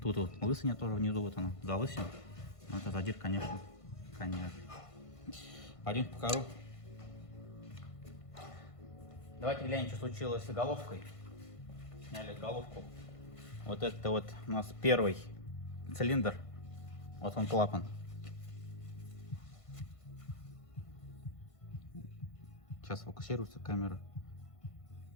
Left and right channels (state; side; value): late; right; 1.5 ms